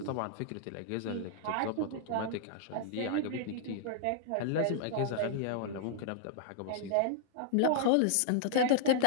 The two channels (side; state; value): both; different; correlation -0.01